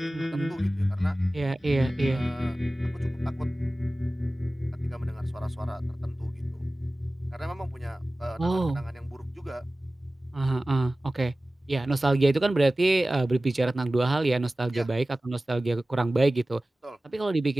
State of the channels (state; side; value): normal; both; correlation 0.97